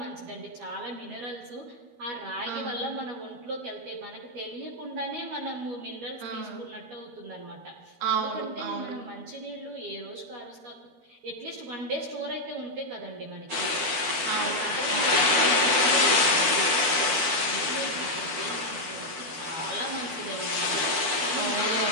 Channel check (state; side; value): late; left; 12 ms